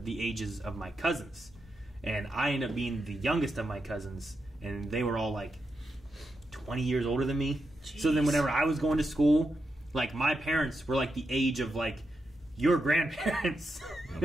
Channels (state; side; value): normal; both; correlation 0.86